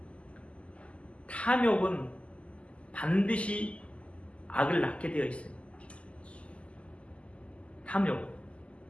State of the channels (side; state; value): right; late; 0.058 ms